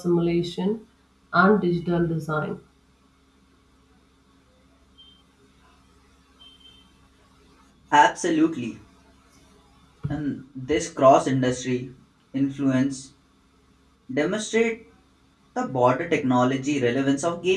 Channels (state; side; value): identical; both; correlation 1.00